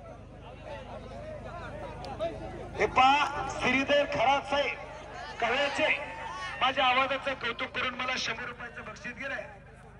हे पहा श्रीधर खरात साहेब कळ्याचे माझ्या आवाजाचं कौतुक करून मला 100 रुपयाचं बक्षीस गेलंय.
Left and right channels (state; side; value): identical; both; correlation 1.00